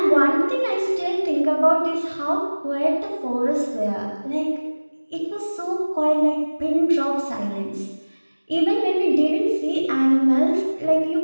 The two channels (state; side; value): inverted; both; correlation -1.00